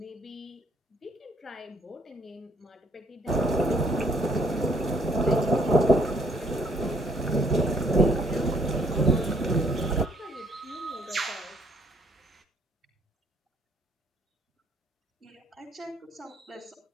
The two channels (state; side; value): normal; both; correlation 0.66